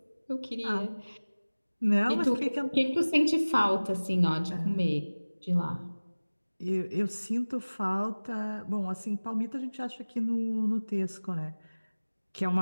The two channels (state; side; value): inverted; both; correlation -1.00